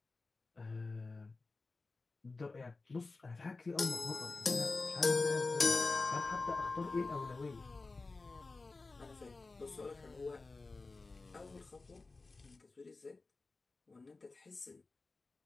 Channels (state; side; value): quieter; right; 3.6 dB